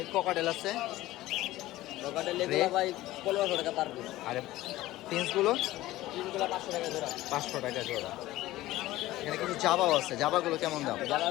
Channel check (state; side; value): quieter; right; 16.6 dB